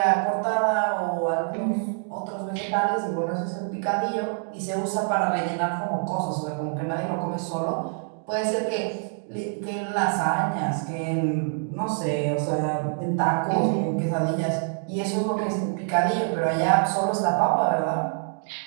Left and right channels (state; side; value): silent; left; 58 dB below the other